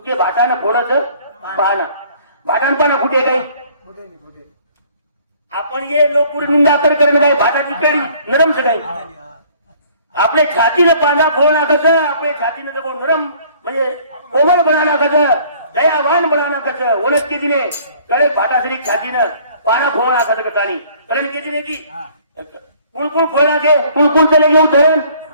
भाटानं फोडच पाना भाटान पाना फुटे काही आपण ये लोक निंदा तर करेन काय भाटाची कडी नरम काही आपले छातीनं पाना फोड नाकायचं आपले छातीनं जर नरम म्हणजे कोमल बना नाकायचं दयावान बना नाकायचं ओळख केली ने करे भाटाश्री छातीनं पाना फोड नाकायचं कथानी करण केली ने की कुळकुळ फोडला घे कुळकुळ चले घेऊ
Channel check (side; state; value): both; inverted; correlation -0.56